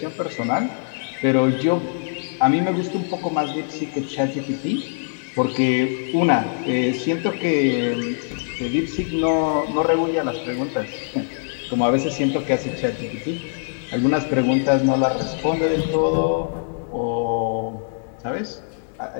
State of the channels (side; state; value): right; silent; digital silence